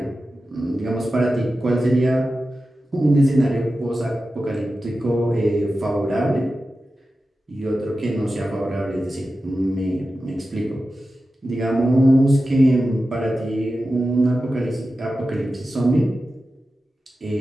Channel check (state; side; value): normal; both; correlation 0.93